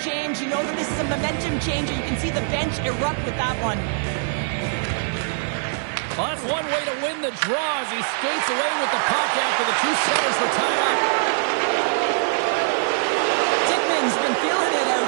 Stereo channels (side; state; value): left; silent; 64 dB below the other